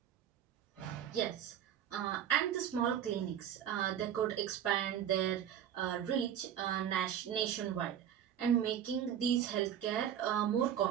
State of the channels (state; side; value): quieter; left; 9.8 dB